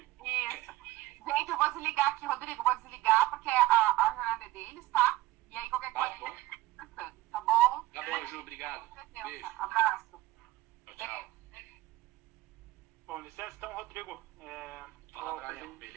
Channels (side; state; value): left; quieter; 17.5 dB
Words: Isso. Gente, eu vou desligar aqui, Rodrigo. Vou desligar porque a jornada é deles, tá? E aí qualquer coisa... Tá bom? Tá bom, Ju. Obrigado. Beijo. Abraço. Tchau. Bom, licença, então, Rodrigo. Fala, Brian.